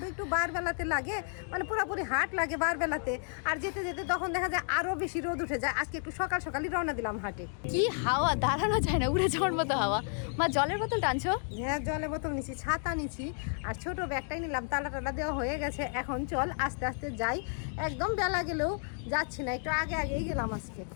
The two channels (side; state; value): right; silent; 55 dB below the other